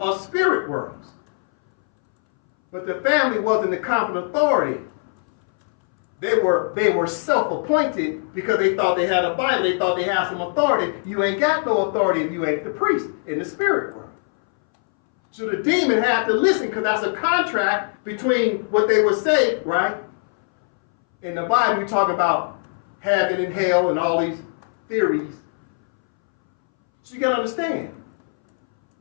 us spirit worlds. But the family wasn't the competent authority. They were self-appointed because they thought they had a Bible. They thought they had some authority. You ain't got no authority if you ain't the priest in the spirit world. So the demon had to listen because that's a contract between what they would say, right? In the Bible, you talk about heaven and hell and all these theories. So you got to understand.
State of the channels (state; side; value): silent; right; 63 dB below the other